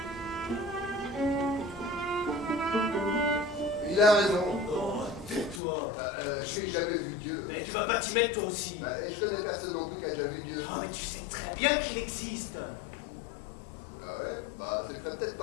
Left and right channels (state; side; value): drops out; right; at 5.6 s